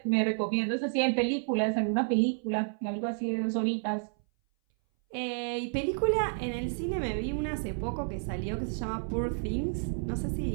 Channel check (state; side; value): silent; left; 57 dB below the other